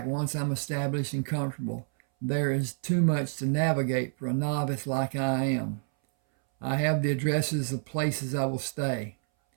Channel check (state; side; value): silent; left; 59 dB below the other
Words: once I'm established and comfortable. There is too much to navigate for a novice like I am. I have the addresses of places I will stay.